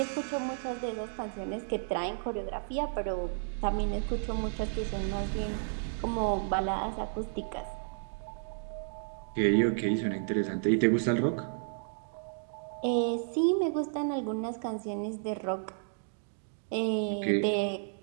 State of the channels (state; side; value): silent; left; digital silence